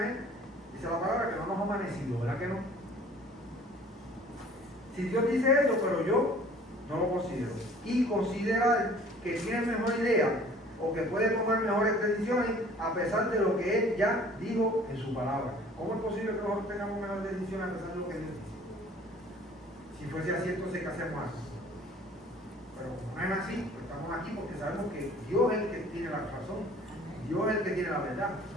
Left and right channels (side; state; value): both; normal; correlation 0.51